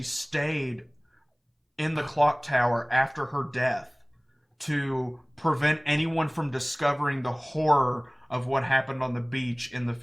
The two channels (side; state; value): both; identical; correlation 1.00